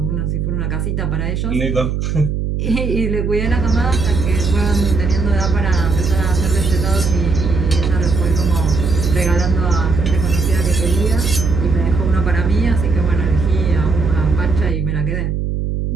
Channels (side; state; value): right; noise; hum, 2 dB below the sound